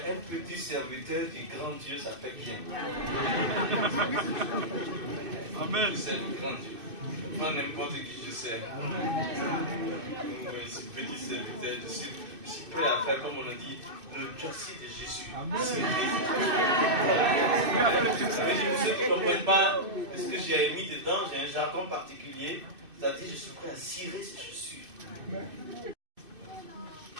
un petit serviteur du grand Dieu, ça fait bien. Amen. C'est le grand Dieu. Pas n'importe qui je sers. Oui, ce petit serviteur, je suis prêt à faire, comme on a dit, le châssis de Jésus. Amen. Ça veut dire, pour ceux qui ne comprennent pas ce que j'ai mis dedans, j'ai un jargon particulier. C'est-à-dire, je suis prêt à cirer ces chaussures.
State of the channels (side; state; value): left; late; 2.7 ms